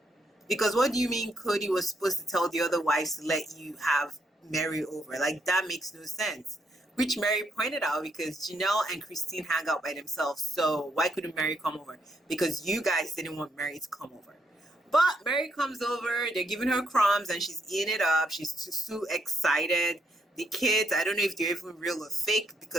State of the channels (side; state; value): both; normal; correlation 0.75